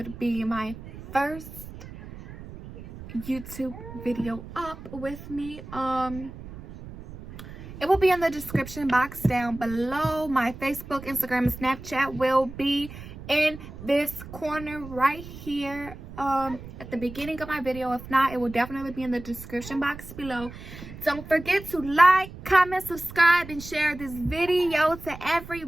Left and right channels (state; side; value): noise; right; rumble, 14 dB below the sound